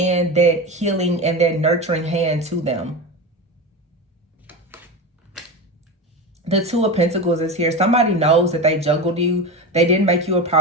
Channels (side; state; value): both; normal; correlation 0.23